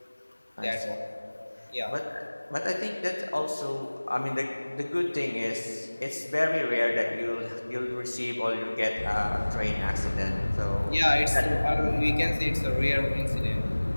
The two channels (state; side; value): inverted; both; correlation -1.00